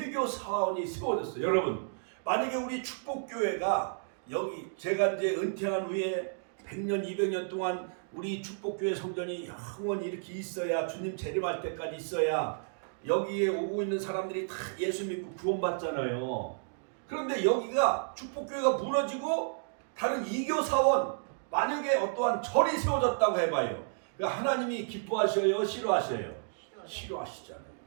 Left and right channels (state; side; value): silent; left; digital silence